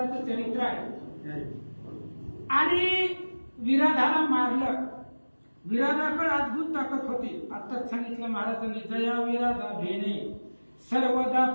चरित्र आहे आणि विराधाला मारलं। विराधाकडे अद्भुत ताकद होती। आताच सांगितलं महाराजांनी, जया विराधा भेणे सर्वदा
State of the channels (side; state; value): both; inverted; correlation -1.00